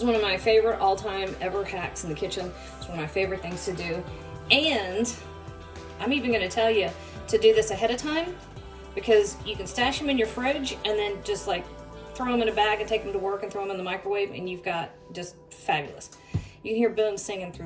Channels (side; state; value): both; identical; correlation 1.00